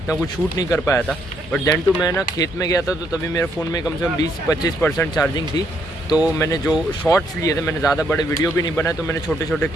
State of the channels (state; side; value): normal; both; correlation 0.73